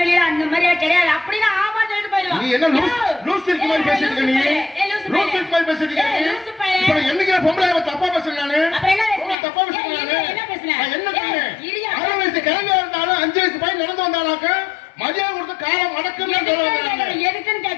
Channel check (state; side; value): drops out; right; at 9.3 s